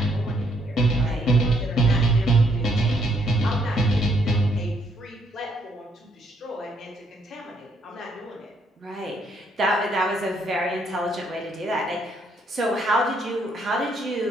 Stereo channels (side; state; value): both; normal; correlation 0.70